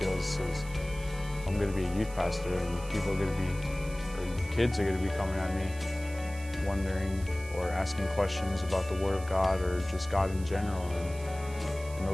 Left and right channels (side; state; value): right; noise; hiss, 18 dB below the sound